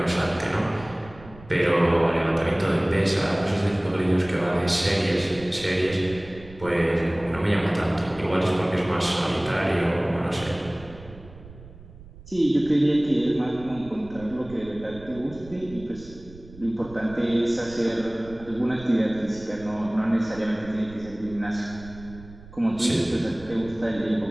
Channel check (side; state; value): right; noise; rumble, 19 dB below the sound